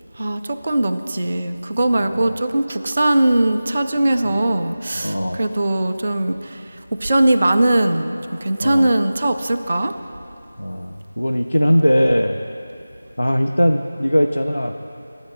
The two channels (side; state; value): both; inverted; correlation -0.97